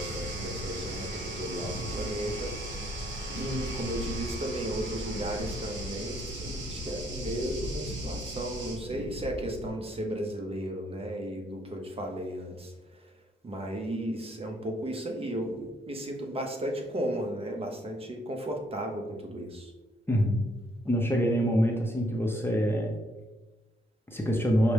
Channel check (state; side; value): normal; both; correlation 0.69